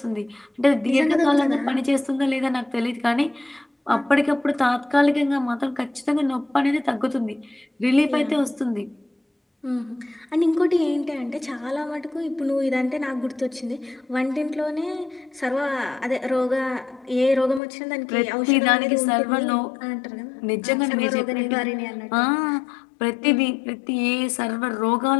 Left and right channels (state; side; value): drops out; right; at 17.6 s